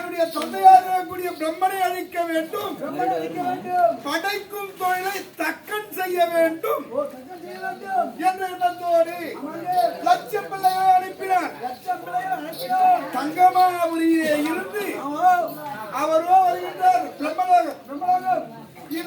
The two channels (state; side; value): identical; both; correlation 1.00